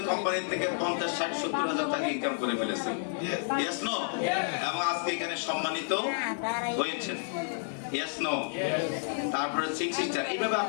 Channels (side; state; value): right; silent; digital silence